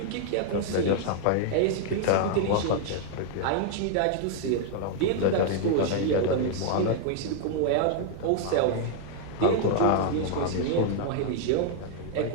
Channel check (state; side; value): different; both; correlation 0.00